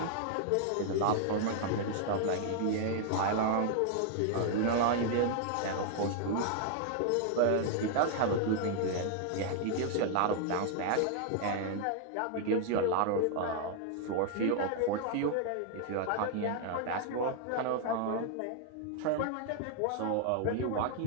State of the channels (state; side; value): different; both; correlation 0.00